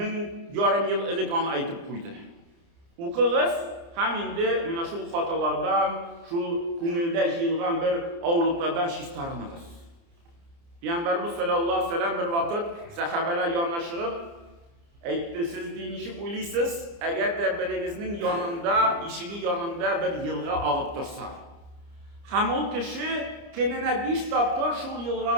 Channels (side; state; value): left; late; 29 ms